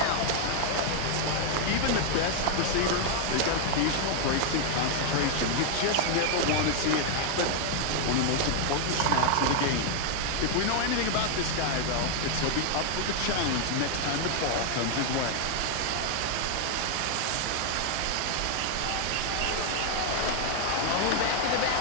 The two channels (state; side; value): different; both; correlation 0.00